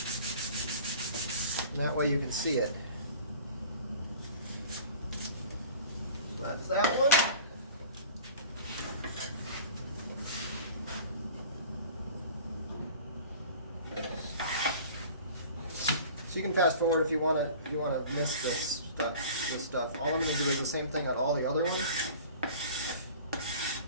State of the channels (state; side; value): inverted; both; correlation -0.43